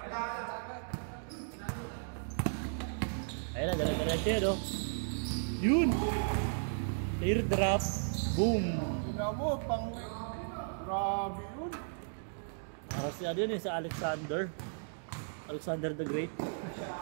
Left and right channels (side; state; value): left; silent; digital silence